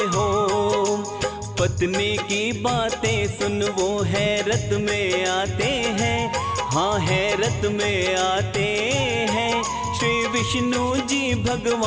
हो। पत्नी की बातें सुन वो हैरत में आते हैं, हाँ हैरत में आते हैं। श्री विष्णु जी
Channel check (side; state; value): both; identical; correlation 1.00